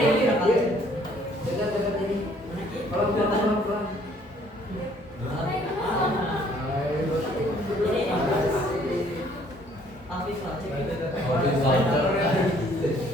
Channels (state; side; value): normal; both; correlation 0.61